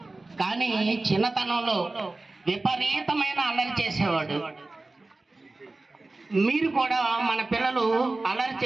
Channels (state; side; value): quieter; left; 3.2 dB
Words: కానీ చిన్నతనంలో విపరీతమైన అల్లరి చేసేవాడు. మీరు కూడా మన పిల్లలు అల్లరి